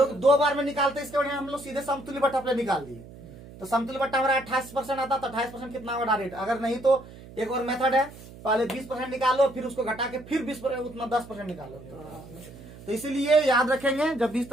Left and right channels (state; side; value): noise; right; hum, 17 dB below the sound